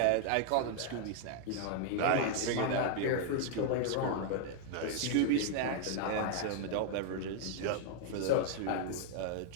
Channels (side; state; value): both; different; correlation 0.00